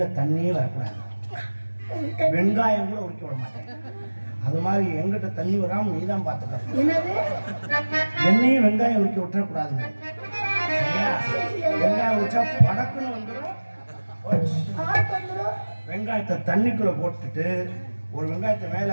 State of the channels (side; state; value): both; inverted; correlation -1.00